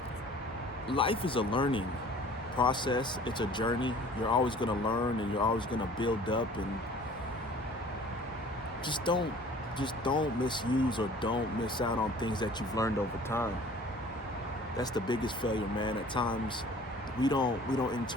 life is a learning process. It's a journey. You're always going to learn and you're always going to build up, and just don't misuse or don't miss out on things that you've learned over time. That's the biggest failure, man. At times we don't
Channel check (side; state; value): both; normal; correlation 0.48